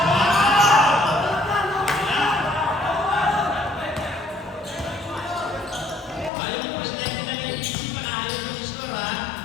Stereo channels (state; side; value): drops out; right; at 6.3 s